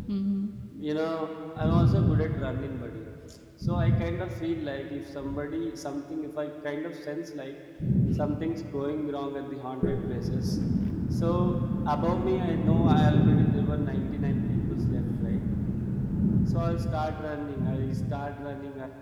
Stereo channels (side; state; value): both; identical; correlation 1.00